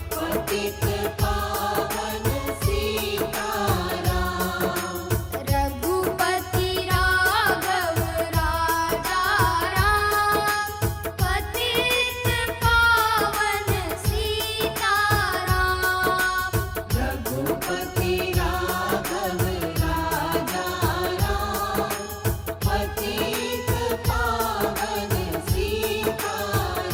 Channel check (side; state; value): both; identical; correlation 1.00